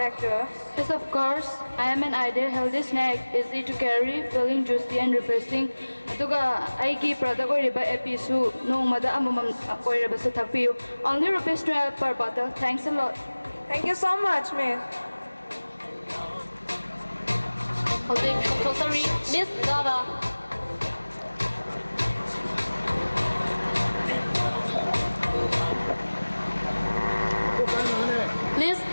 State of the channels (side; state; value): both; inverted; correlation -1.00